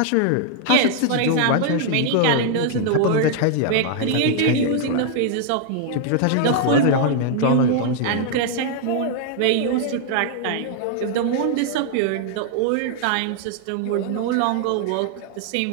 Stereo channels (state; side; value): different; both; correlation 0.00